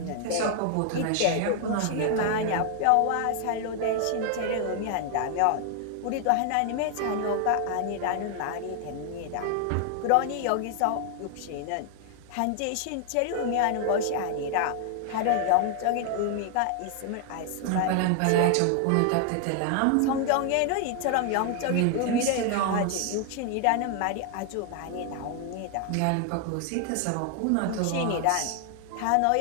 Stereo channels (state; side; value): different; both; correlation 0.00